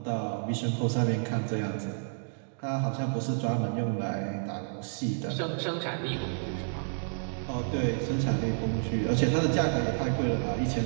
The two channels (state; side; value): silent; left; digital silence